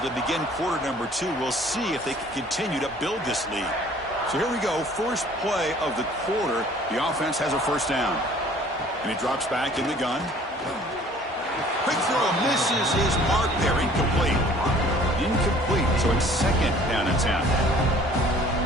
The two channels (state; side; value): normal; both; correlation 0.53